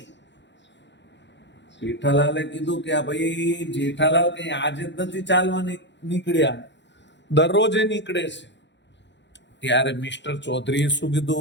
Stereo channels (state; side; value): late; right; 0.52 ms